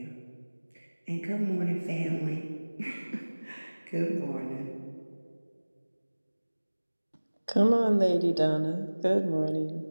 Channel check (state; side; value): inverted; both; correlation -1.00